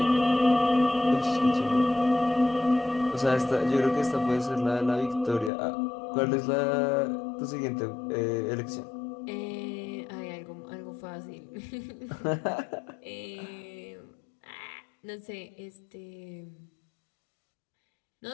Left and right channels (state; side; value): drops out; right; at 5.5 s